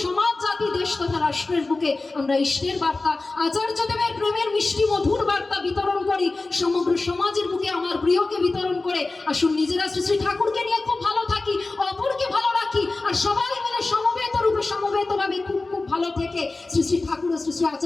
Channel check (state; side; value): quieter; right; 3.4 dB